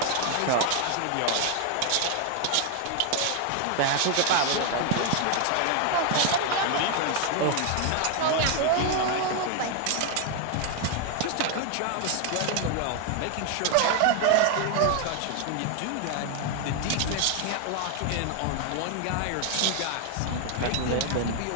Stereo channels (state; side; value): different; both; correlation 0.01